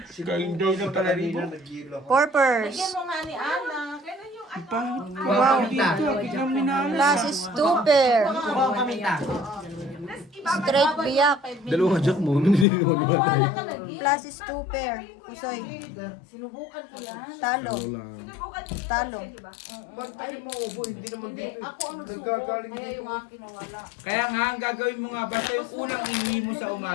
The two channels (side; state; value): right; drops out; at 12.7 s